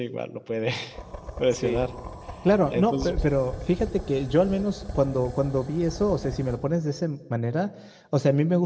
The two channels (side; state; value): both; identical; correlation 1.00